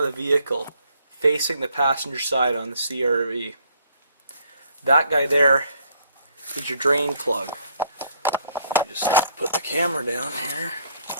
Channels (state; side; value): inverted; both; correlation -0.65